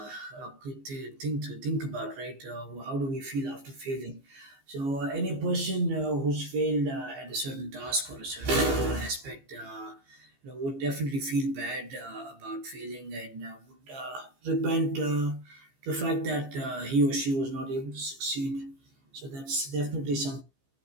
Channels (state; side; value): late; left; 15 ms